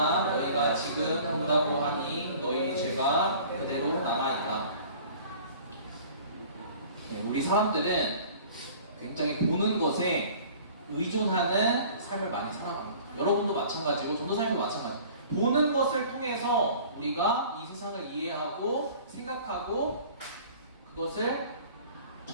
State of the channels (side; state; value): both; inverted; correlation -0.48